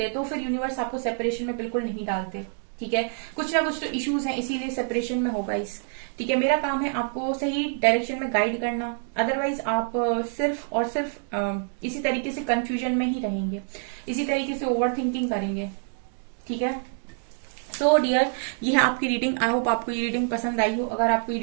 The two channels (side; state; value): left; silent; 61 dB below the other